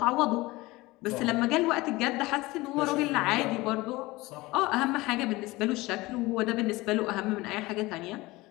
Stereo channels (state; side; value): quieter; right; 20.7 dB